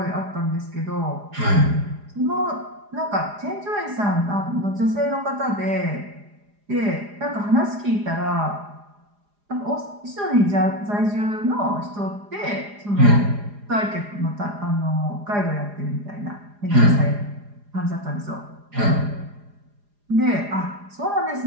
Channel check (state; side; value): late; left; 4.9 ms